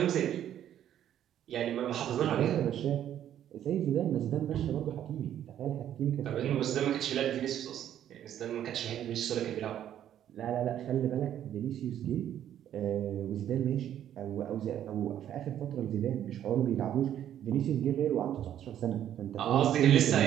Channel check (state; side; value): quieter; left; 10.8 dB